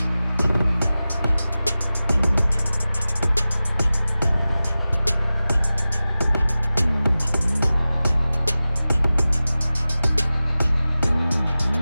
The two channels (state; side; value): inverted; both; correlation -0.96